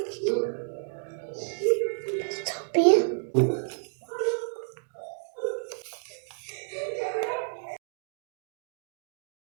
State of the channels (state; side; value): silent; left; digital silence